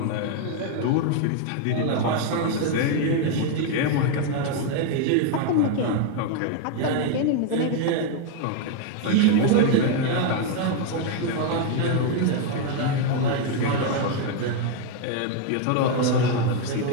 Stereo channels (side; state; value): both; different; correlation 0.01